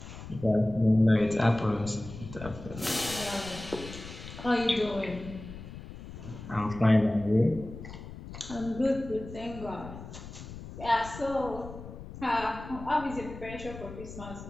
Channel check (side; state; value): left; noise; rumble, 12 dB below the sound